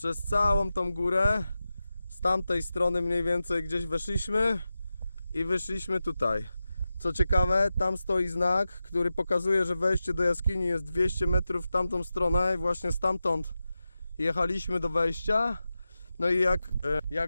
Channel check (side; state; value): both; inverted; correlation -0.92